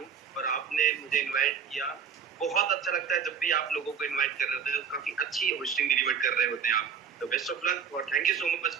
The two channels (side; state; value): left; quieter; 7.1 dB